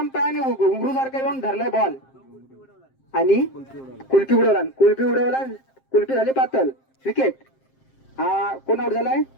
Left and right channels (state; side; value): late; right; 7.6 ms